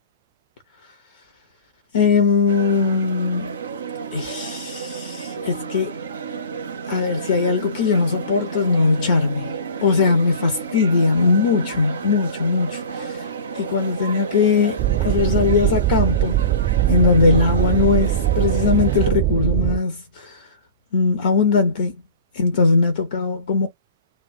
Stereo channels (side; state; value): both; inverted; correlation -0.39